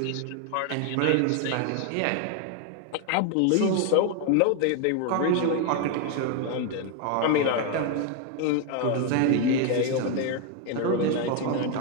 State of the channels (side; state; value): both; different; correlation 0.01